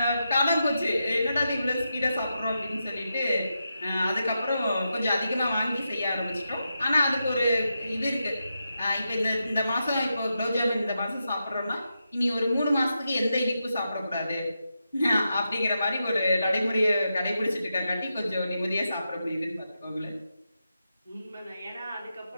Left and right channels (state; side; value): inverted; both; correlation -0.87